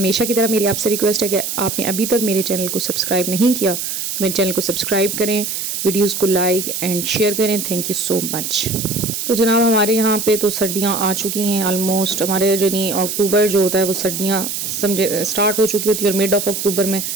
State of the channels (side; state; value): right; noise; hiss, 4 dB below the sound